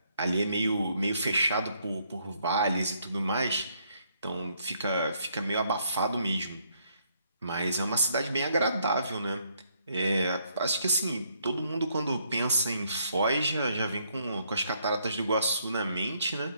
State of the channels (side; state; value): both; inverted; correlation -0.71